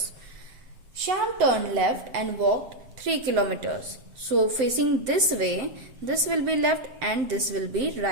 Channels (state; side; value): late; left; 7.7 ms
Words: Shyam turned left and walked 3 kilometers. So facing this way, this will be left and this will be